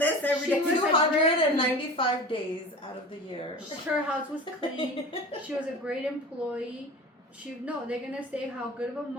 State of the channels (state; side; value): normal; both; correlation 0.35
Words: every day. 295 days out of the year. her house was clean. She was a great employee. They're gonna say how good of a